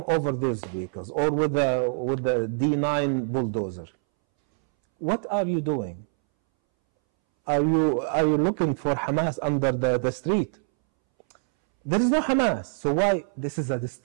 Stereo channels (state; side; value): silent; left; 60 dB below the other